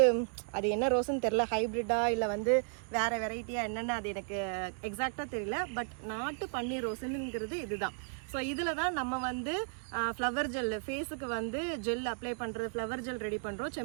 அது என்ன ரோஸுன்னு தெரில, ஹைப்ரிட்டா இல்லை வந்து வேறு வெரைட்டியாக என்னென்னு அது எனக்கு எக்ஸாக்டாக தெரியல. பட் நாட்டு பன்னீர் ரோஸுங்கிறது இதுதான். ஸோ இதில் தான் நம்ம வந்து ஃப்ளவர் ஜெல், ஃபேஸுக்கு வந்து ஜெல் அப்ளை பண்ணுறது, ஃப்ளவர் ஜெல் ரெடி பண்ணுறோம்.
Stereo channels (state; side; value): silent; left; 55 dB below the other